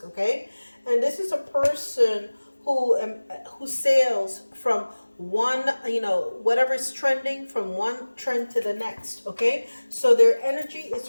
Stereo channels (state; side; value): inverted; both; correlation -1.00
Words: okay? And this is a person who sails from one, whatever is trending, from one trend to the next, okay? So their energy